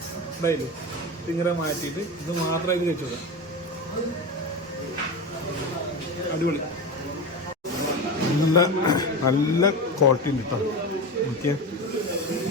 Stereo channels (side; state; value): both; normal; correlation 0.23